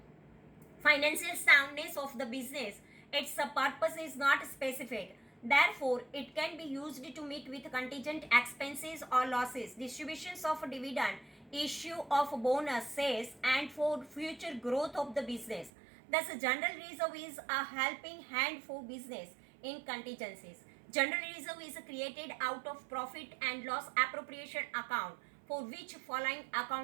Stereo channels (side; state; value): left; drops out; at 15.7 s